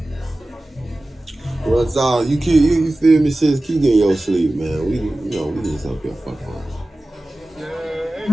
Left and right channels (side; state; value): both; normal; correlation 0.97